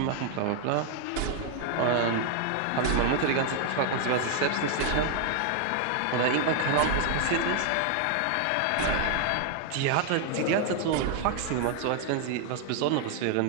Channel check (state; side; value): different; both; correlation 0.00